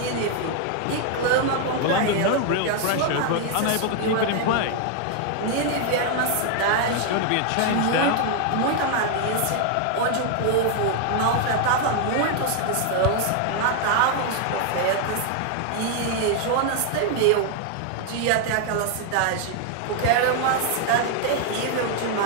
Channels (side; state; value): both; different; correlation 0.00